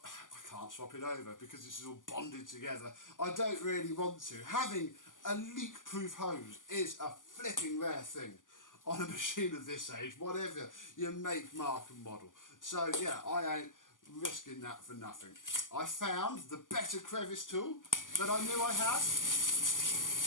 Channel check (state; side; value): late; right; 0.88 ms